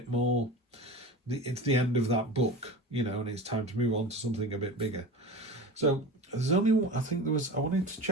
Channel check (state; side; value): normal; both; correlation 0.32